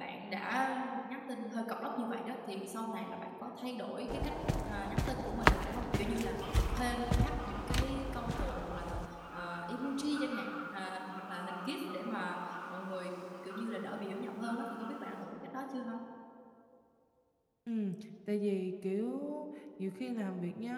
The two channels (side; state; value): both; identical; correlation 1.00